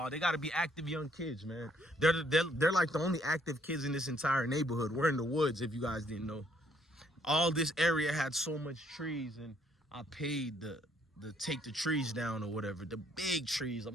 They got to be active young kids, man. They're like the only active kids in this entire neighborhood. We're in the woods, if you guys didn't know. All this area had so much trees, and I paid the take the trees down or whatever. The big trees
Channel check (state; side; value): normal; both; correlation 0.67